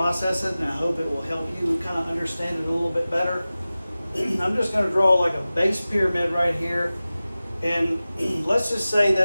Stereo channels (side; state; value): both; inverted; correlation -0.96